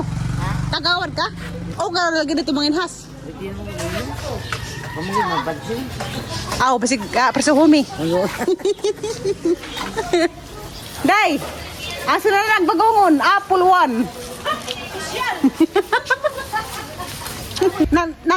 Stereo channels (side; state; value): both; identical; correlation 1.00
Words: Tagawad ka? O garo lagi dito manginhas. Pamuli mabadso. Basig persuhumi. Day. Asa na nagbagongon? Puluan.